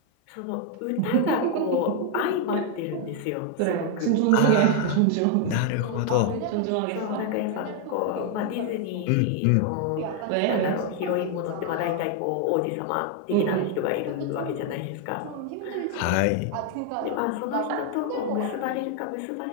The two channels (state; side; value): different; both; correlation 0.01